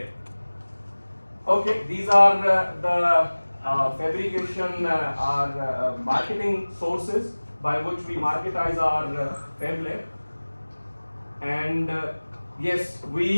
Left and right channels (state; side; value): inverted; both; correlation -1.00